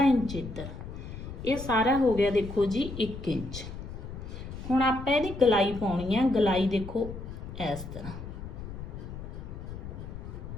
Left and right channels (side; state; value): left; noise; rumble, 10 dB below the sound